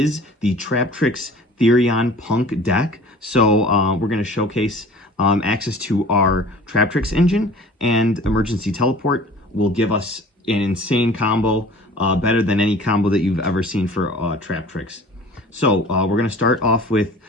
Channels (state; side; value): normal; both; correlation 0.45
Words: the Traptrix Therion Punk deck. So we're going to showcase access to our Traptrix engine, and Emergency Teleport will give us an insane combo, better than any combo that you've ever seen for Traptrix. So we're going to start off with